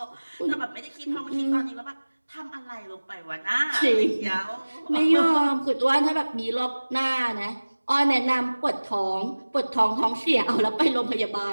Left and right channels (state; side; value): inverted; both; correlation -1.00